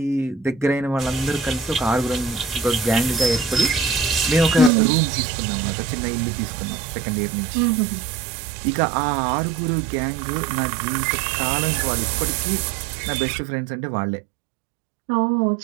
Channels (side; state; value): left; drops out; at 4.7 s